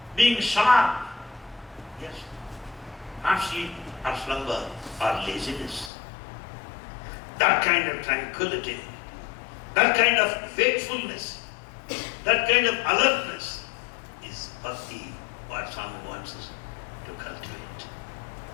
being sharp. Yes. Not sleep or slumber or laziness. That kind of tranquility, that kind of wakefulness, that kind of alertness is bhakti, what Swami wants us to cultivate,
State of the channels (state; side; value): drops out; right; at 5.9 s